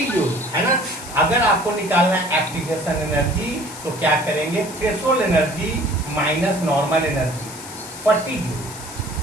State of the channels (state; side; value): noise; left; hiss, 13 dB below the sound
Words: जूल, है ना? अगर आपको निकालना है एक्टिवेशन एनर्जी तो क्या करेंगे? Threshold energy minus normal energy, 40 joule.